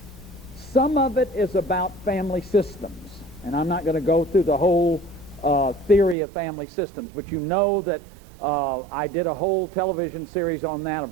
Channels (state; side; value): drops out; left; at 6.2 s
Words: Some of it is about family systems, and I'm not going to go through the whole theory of family systems, but you know that I did a whole television series on that.